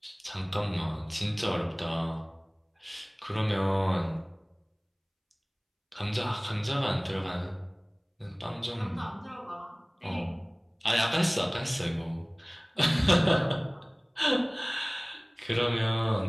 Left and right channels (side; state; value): both; identical; correlation 1.00